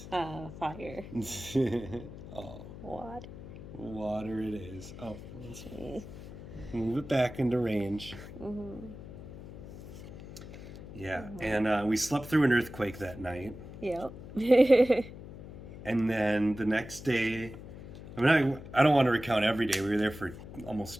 Fire. Oh, Water. it is. Oh, let's move it back into range. Yeah, and we slept through an earthquake that night. Yep. And then the next day, I don't want to recount every day. We were there for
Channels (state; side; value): noise; left; hum, 13 dB below the sound